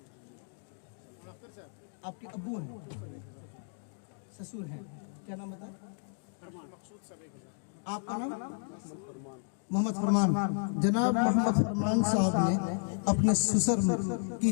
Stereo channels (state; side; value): silent; right; 56 dB below the other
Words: आपके अब्बू हैं, ससुर हैं, क्या नाम बताए? आपका नाम? मोहम्मद फरमान। जनाब मोहम्मद फरमान साहब ने अपने ससुर की